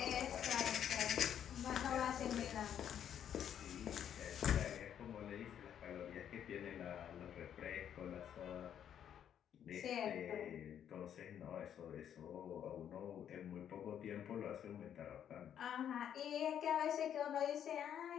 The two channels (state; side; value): quieter; right; 9.5 dB